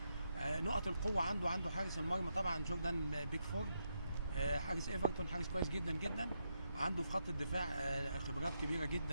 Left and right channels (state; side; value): inverted; both; correlation -0.82